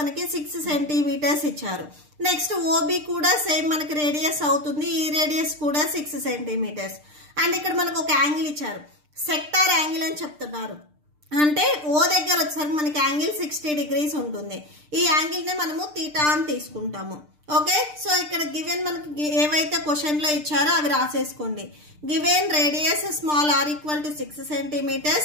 6 సెంటీమీటర్స్ ఇచ్చారు. నెక్స్ట్ OB కూడా సేమ్ మనకి రేడియస్ అవుతుంది. ఈ రేడియస్ కూడా 6 సెంటీమీటర్స్. అండ్ ఇక్కడ మనకు ఒక యాంగిల్ ఇచ్చారు, సెక్టార్ యాంగిల్ అని చెప్తున్నారు. అంటే O దగ్గర వచ్చేసరికి మనకి యాంగిల్ 60 degrees ఉంటుంది. ఈ యాంగిల్ నే మనము θ అని తీసుకుంటాము. ఓకే, సో ఇక్కడ గివెన్ మనకి ఏవైతే క్వశ్చన్ లో ఇచ్చారో అవి రాసేసుకోండి. Given radius small r equal to 6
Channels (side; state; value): left; late; 6.7 ms